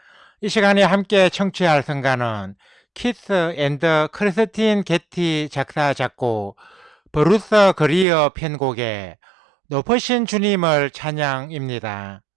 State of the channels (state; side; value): drops out; left; at 8.1 s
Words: 이 시간에 함께 청취할 성가는 키스 앤드 크리스틴 게티 작사 작곡 브루스 그리어 편곡의 높으신 주님을 찬양입니다.